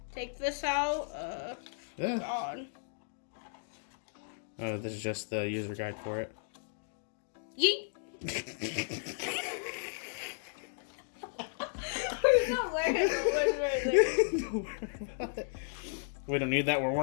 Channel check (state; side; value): silent; right; digital silence